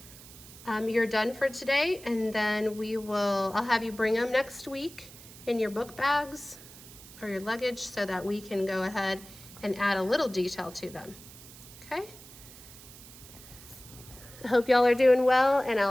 you're done for today, and then I'll have you bring them next week in your book bags or your luggage so that we can go ahead and add a little detail to them. Okay? I hope y'all are doing well, and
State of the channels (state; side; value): noise; right; hiss, 18 dB below the sound